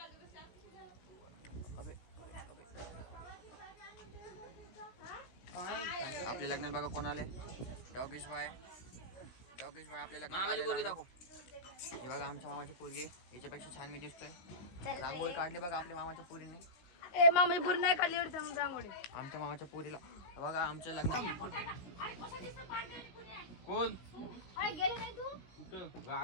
आपल्या लग्नात बघा कोण आले. डॉगेश भाई आपल्या लग्नात. हे बघा आमच्या मामाची पोरगी, याच्यापेक्षा छान मी दिसतोय. रांगोळी काढली बघा आपल्या मामाच्या पोरीने. मामाची पोरी नाही काढली रांगोळी. आमच्या मामाच्या पोरीला बघा आमच्या लग्नात. कोण गेले नाही तू कुठं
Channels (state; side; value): late; right; 16 ms